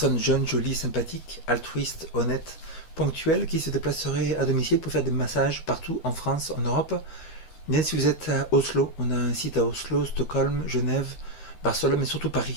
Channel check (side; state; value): right; late; 13 ms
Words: jeunes, jolies, sympathiques, altruistes, honnêtes, ponctuelles qui se déplaceraient à domicile pour faire des massages partout en France, en Europe. Bien si vous êtes à Oslo, on a un site à Oslo, Stockholm, Genève, Barcelone, mais surtout